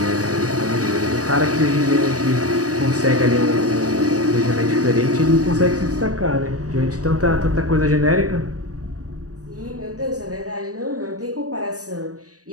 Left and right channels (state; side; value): late; left; 0.67 ms